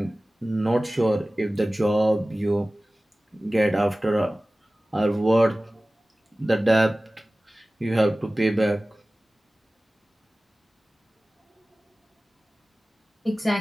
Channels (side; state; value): both; normal; correlation 0.97